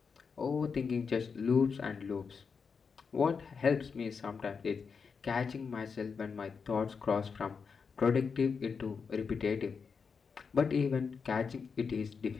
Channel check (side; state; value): right; quieter; 5.6 dB